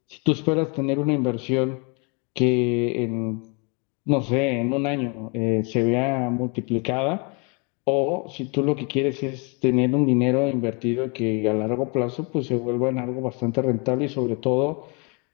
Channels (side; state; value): right; quieter; 32.3 dB